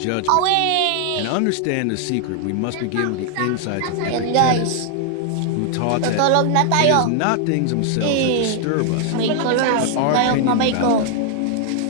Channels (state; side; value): different; both; correlation 0.00